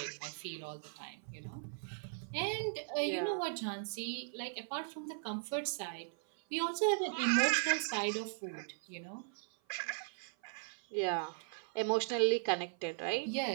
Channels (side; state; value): left; silent; 52 dB below the other